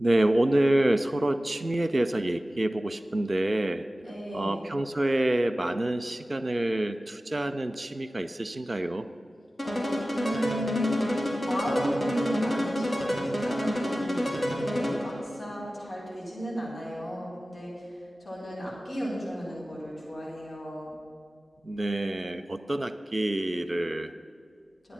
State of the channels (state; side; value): normal; both; correlation 0.96